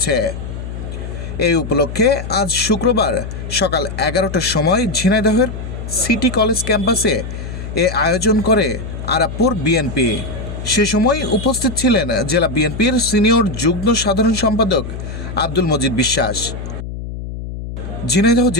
এই উপলক্ষে আজ শুক্রবার সকাল ১১টার সময় ঝিনাইদহের সিটি কলেজ ক্যাম্পাসে এ আয়োজন করে আরাপপুর বিএনপি। সে সময় উপস্থিত ছিলেন জেলা বিএনপির সিনিয়র যুগ্ম সাধারণ সম্পাদক আব্দুল মজিদ বিশ্বাস, ঝিনাইদহ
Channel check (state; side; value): noise; left; hum, 8 dB below the sound